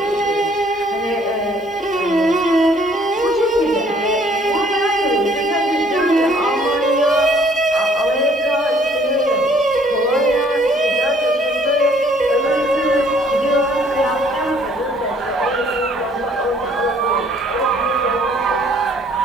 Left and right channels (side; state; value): both; normal; correlation 0.60